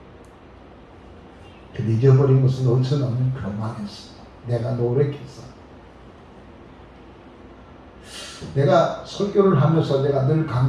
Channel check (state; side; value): identical; both; correlation 1.00